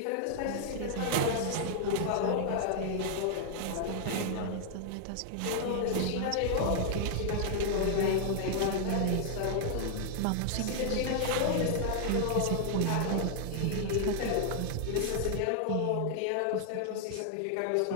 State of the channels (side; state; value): both; different; correlation -0.01